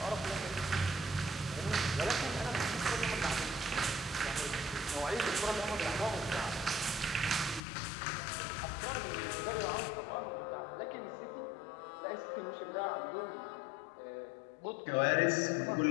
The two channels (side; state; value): right; drops out; at 7.6 s